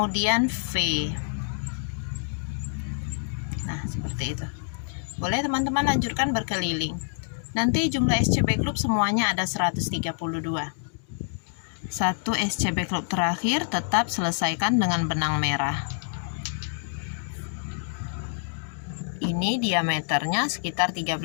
V. Nah, seperti itu. Boleh teman-teman lanjutkan berkeliling. Nanti jumlah SC backloop semuanya ada 132. 1 SC backloop terakhir tetap selesaikan dengan benang merah. Ini diameternya sekitar 13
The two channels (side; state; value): right; silent; digital silence